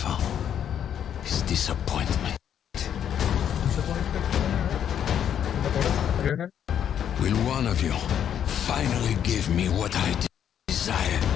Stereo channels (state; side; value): quieter; right; 9.3 dB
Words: is disappointment. Will one of you finally give me what I desire?